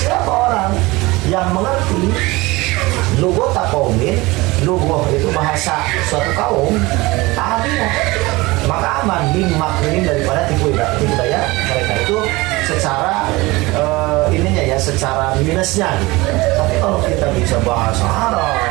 orang yang mengerti lughata qaumin, lughah itu bahasa suatu kaum, amina, maka aman min makrihim, daripada tipu daya mereka. Itu secara ininya ya, secara minusnya gitu. Tapi kalau kita bisa bahasa Arab,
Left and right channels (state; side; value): quieter; left; 21.9 dB